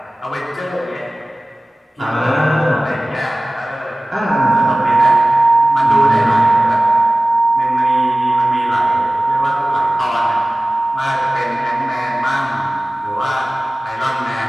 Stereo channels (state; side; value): normal; both; correlation 0.97